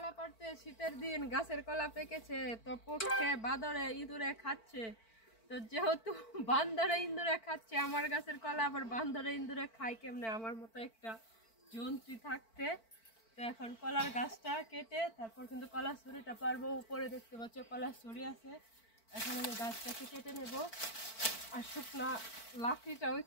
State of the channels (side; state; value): right; late; 4.5 ms